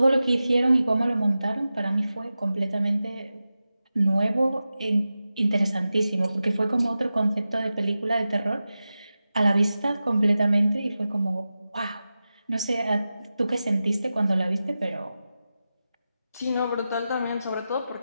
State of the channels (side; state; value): both; inverted; correlation -0.93